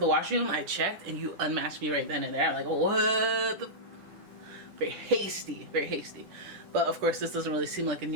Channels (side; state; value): left; late; 10 ms